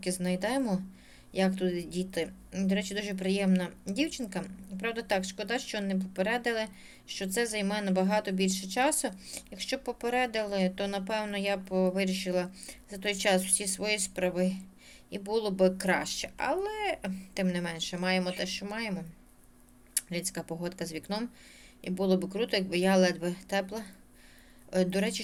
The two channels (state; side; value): identical; both; correlation 1.00